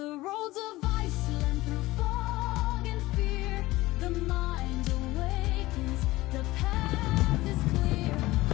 roads of Iceland, through fog and fear, the mind awakens, the path is clear.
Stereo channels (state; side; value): quieter; right; 18.7 dB